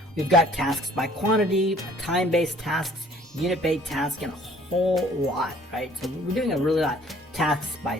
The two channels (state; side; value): normal; both; correlation 0.56